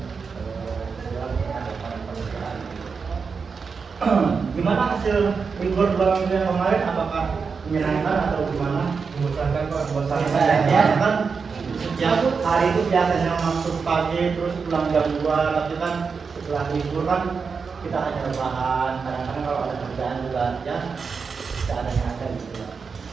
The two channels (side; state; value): left; quieter; 5.3 dB